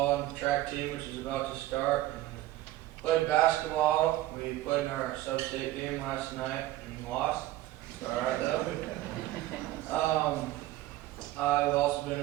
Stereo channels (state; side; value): quieter; left; 15.6 dB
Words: and track team, which is about to start. And played basketball. We played in our sub-state game last night and lost. All right, though. I've also been